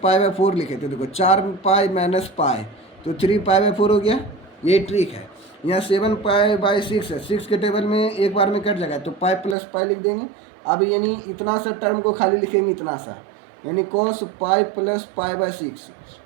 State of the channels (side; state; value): left; drops out; at 9.6 s